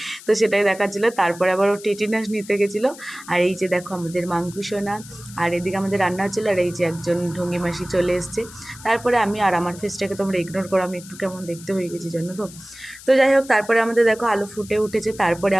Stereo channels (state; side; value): noise; left; hiss, 18 dB below the sound